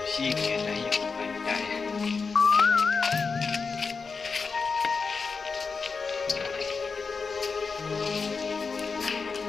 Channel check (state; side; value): quieter; right; 4.9 dB